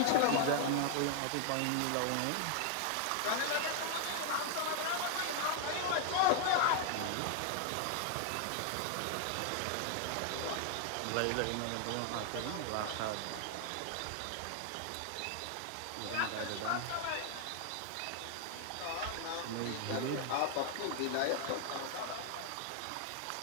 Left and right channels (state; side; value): different; both; correlation 0.00